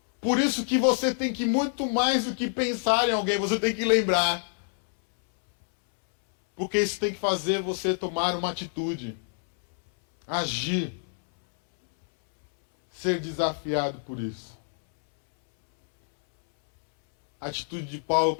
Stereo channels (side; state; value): right; silent; 61 dB below the other